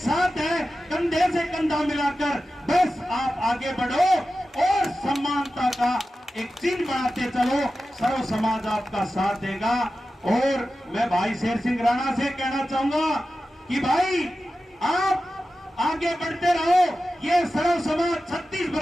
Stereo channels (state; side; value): normal; both; correlation 0.93